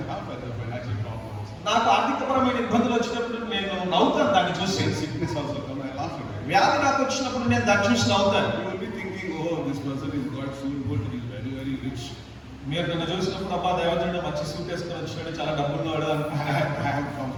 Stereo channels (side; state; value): both; identical; correlation 1.00